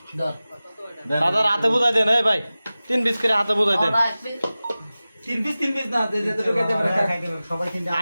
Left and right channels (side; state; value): both; inverted; correlation -0.96